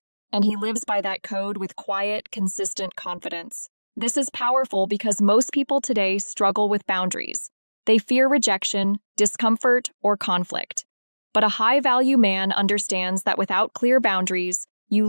and he lives by that code with quiet, consistent confidence. This is powerful because most people today struggle with boundaries. They fear rejection, discomfort, or conflict. But a high-value man understands that without clear boundaries, you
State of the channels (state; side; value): inverted; both; correlation -1.00